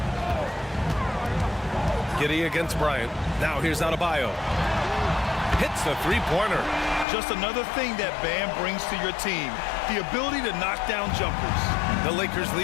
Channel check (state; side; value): drops out; right; at 7.1 s